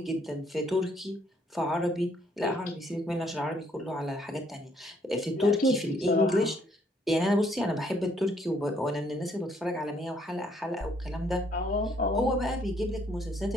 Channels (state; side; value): normal; both; correlation 0.67